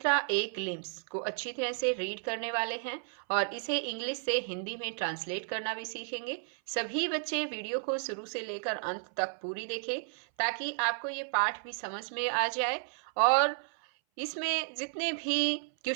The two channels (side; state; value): left; silent; 56 dB below the other